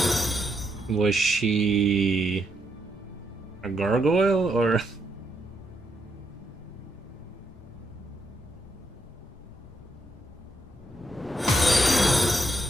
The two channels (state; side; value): noise; left; rumble, 20 dB below the sound